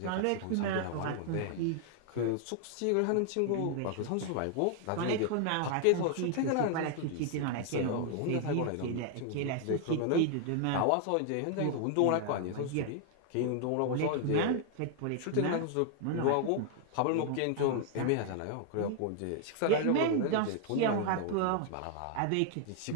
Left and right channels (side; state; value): both; different; correlation 0.00